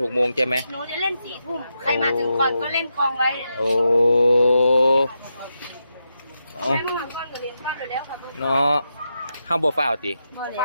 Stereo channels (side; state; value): both; inverted; correlation -0.86